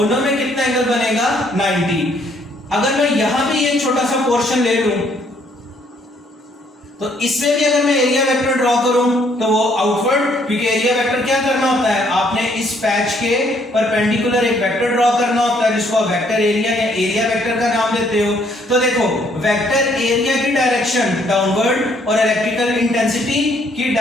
में कितना एंगल बनेगा 90। अगर मैं यहां भी एक छोटा सा पोर्शन ले लूं तो इसमें भी अगर मैं एरिया वेक्टर ड्रॉ करूं तो वो आउटवर्ड, क्योंकि एरिया वेक्टर क्या करना होता है, आपने इस पैच के परपेंडिकुलर एक वेक्टर ड्रॉ करना होता है जिसको आप वेक्टर एरिया या एरिया वेक्टर का नाम देते हो। तो देखो वेक्टर एरिया की डायरेक्शन डाउनवर्ड और इलेक्ट्रिकल इंटेंसिटी की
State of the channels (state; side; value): normal; both; correlation 0.67